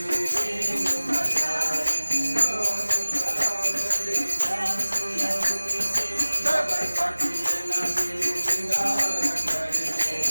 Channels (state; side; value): inverted; both; correlation -1.00